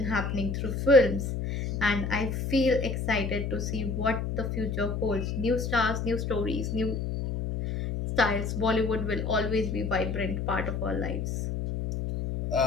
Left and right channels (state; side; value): noise; left; hum, 2 dB below the sound